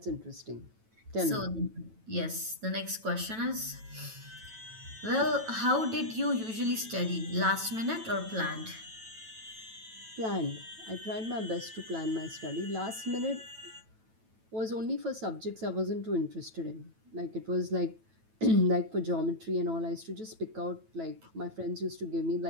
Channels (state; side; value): late; left; 9.1 ms